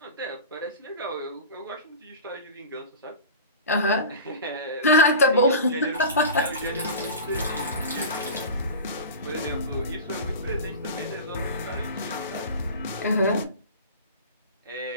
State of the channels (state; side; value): inverted; both; correlation -0.32